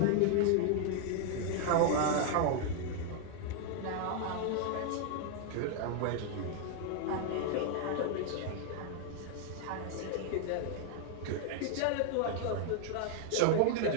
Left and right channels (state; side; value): different; both; correlation 0.00